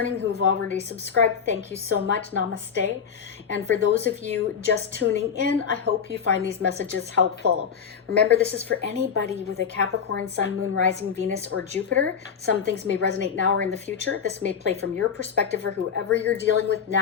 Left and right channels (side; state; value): right; quieter; 7.0 dB